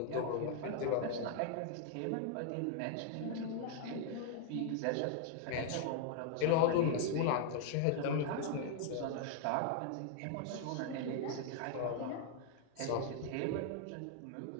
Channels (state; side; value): different; both; correlation 0.00